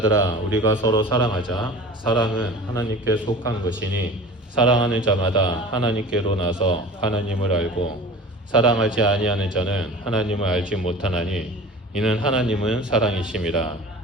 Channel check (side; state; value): both; normal; correlation 0.39